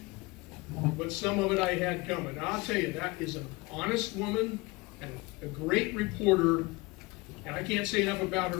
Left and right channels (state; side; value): quieter; right; 23.6 dB